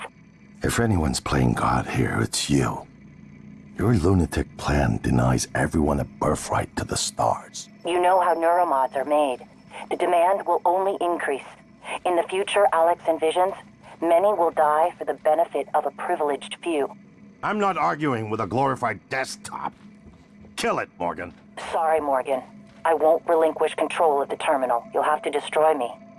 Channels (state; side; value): identical; both; correlation 1.00